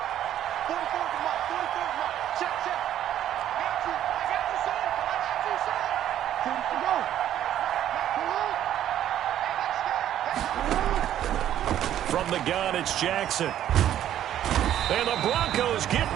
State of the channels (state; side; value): quieter; left; 11.3 dB